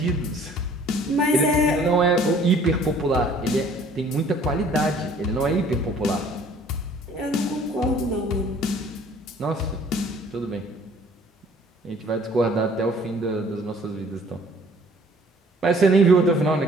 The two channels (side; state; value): both; normal; correlation 0.55